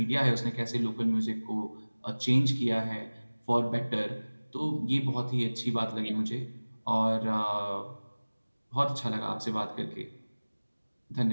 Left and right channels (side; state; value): both; inverted; correlation -1.00